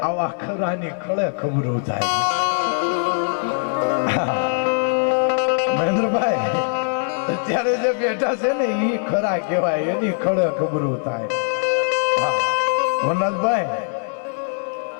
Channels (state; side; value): silent; right; digital silence